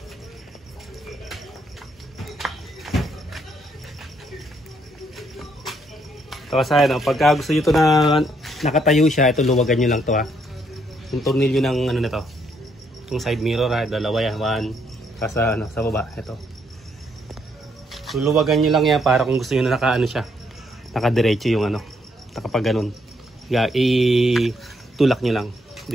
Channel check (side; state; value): both; normal; correlation 0.72